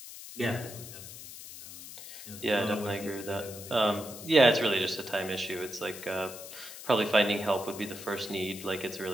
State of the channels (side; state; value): left; noise; hiss, 13 dB below the sound